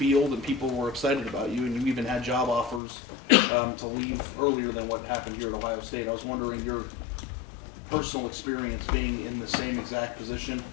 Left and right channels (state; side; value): drops out; right; at 2.8 s